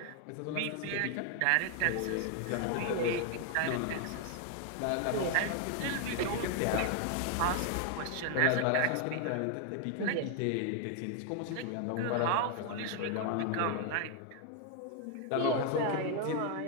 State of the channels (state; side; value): different; both; correlation 0.00